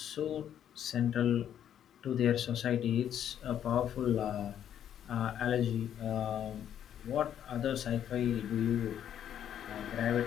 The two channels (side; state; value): right; quieter; 9.9 dB